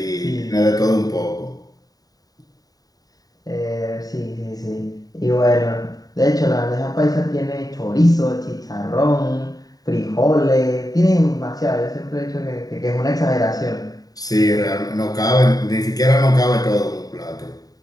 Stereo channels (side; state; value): right; late; 0.18 ms